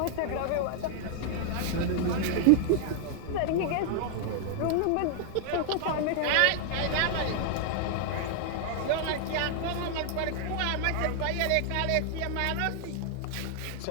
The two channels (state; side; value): different; both; correlation 0.00